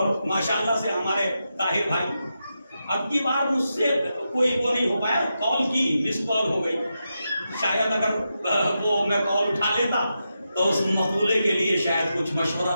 ماشاءاللہ سے ہمارے طاہر بھائی اب کی بار مجھ سے کوئی وہ نہیں ہو پایا، کال کی، مس کال ہو گئی. شاید اگر وہ میں کال اٹھا لیتا تو اس مقولے کے لیے شاید کچھ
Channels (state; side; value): inverted; both; correlation -0.87